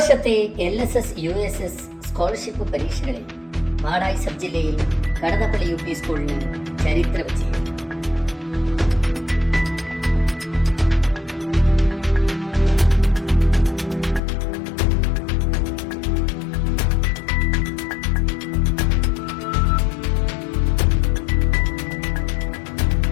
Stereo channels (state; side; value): drops out; right; at 14.2 s